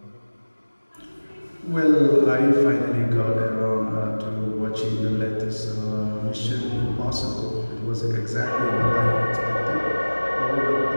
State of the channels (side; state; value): both; inverted; correlation -1.00